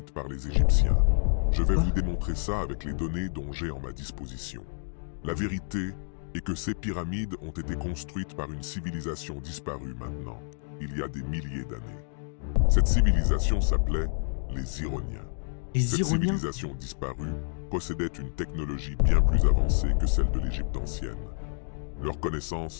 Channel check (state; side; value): silent; right; digital silence